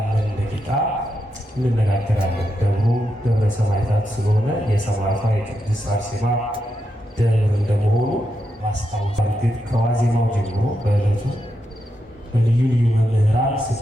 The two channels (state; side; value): normal; both; correlation 0.84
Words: ደቂቃ እንነጋገራለን። ደብሩ ደብረ ሰማዕታት ስለሆነ የሰማዕቷ የቅድስት አርሴማ ደብር እንደመሆኑ ማስታወስ እርግጥ ከዋዜማው ጀምሮ በዕለቱ በልዩ ልዩ መምህራን